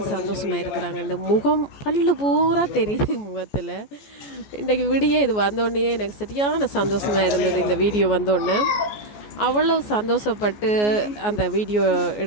சந்தோஷமாக இருக்கிறாங்க. இந்த முகம் பல்லு பூரா தெரியுது முகத்தில். இன்றைக்கு விடிய இது வந்தோடனே எனக்கு சரியான சந்தோஷமாக இருந்தது. இந்த வீடியோ வந்தோடனே அவ்வளவு சந்தோஷப்பட்டு அந்த வீடியோ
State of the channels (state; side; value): late; right; 14 ms